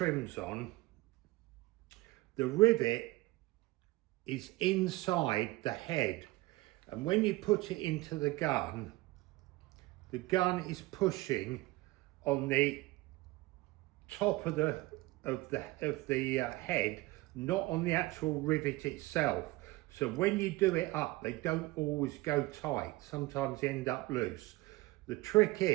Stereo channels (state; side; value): quieter; left; 20.5 dB